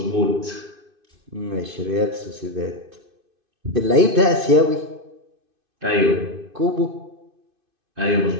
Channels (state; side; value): late; left; 2.5 ms